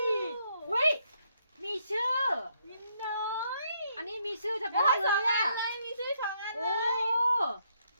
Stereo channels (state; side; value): inverted; both; correlation -0.73